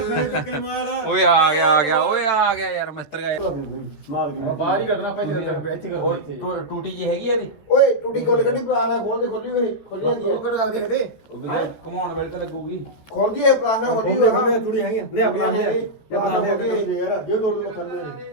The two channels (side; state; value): right; late; 14 ms